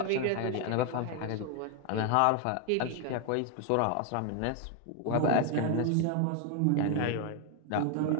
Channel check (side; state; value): both; different; correlation 0.00